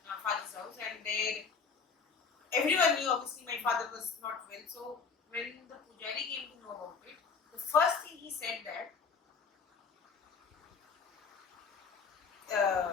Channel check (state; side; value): quieter; right; 5.3 dB